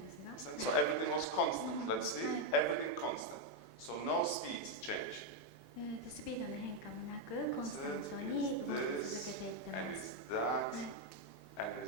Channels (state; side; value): normal; both; correlation 0.02